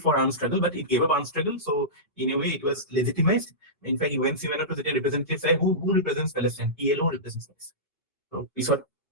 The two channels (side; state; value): both; normal; correlation -0.18